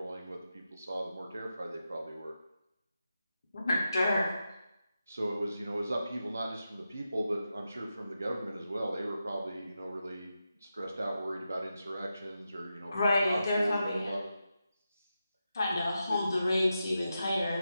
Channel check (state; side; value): inverted; both; correlation -0.89